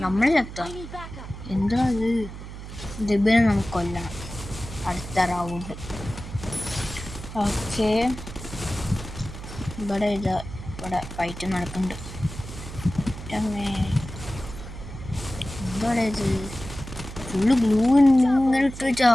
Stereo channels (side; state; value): right; noise; hum, 11 dB below the sound